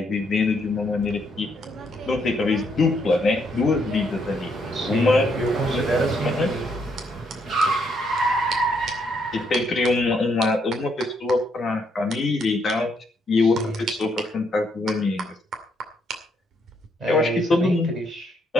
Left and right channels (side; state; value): both; normal; correlation 0.73